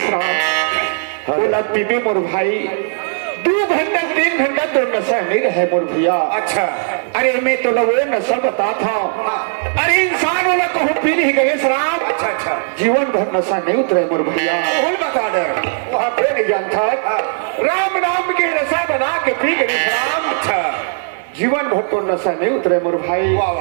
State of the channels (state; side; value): silent; left; 68 dB below the other